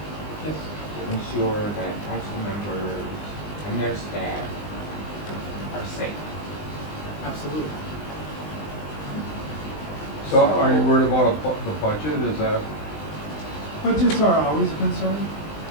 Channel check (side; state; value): right; late; 20 ms